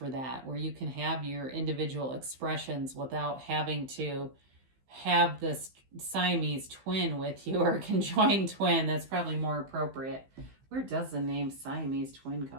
that, where you can have your individual expressions without having to have this Siamese twin with you, or conjoined twin. That's probably more appropriate. Where does the name Siamese twin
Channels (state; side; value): late; left; 15 ms